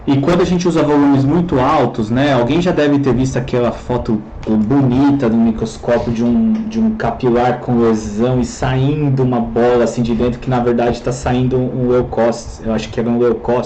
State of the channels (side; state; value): both; identical; correlation 1.00